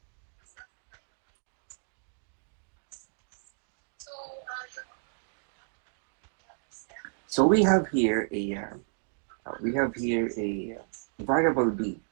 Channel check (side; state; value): left; silent; digital silence